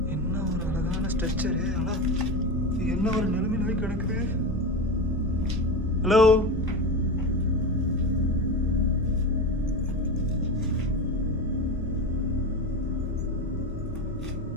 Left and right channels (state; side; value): normal; both; correlation 0.22